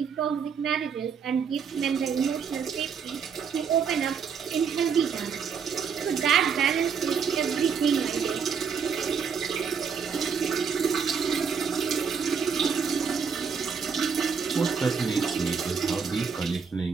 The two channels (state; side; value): quieter; left; 6.4 dB